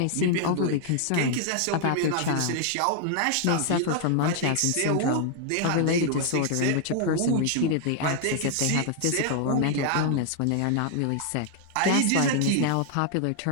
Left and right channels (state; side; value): different; both; correlation 0.00